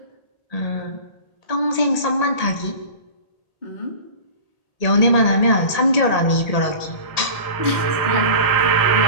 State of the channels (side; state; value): right; late; 1.8 ms